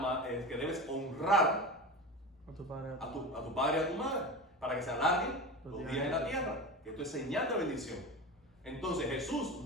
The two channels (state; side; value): normal; both; correlation 0.27